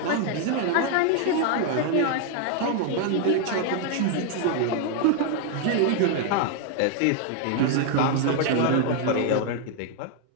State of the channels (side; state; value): both; different; correlation 0.00